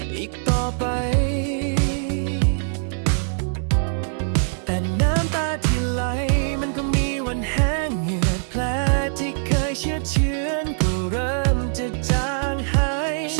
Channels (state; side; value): silent; left; digital silence